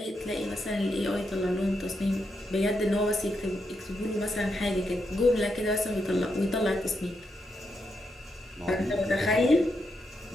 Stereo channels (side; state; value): both; normal; correlation 0.82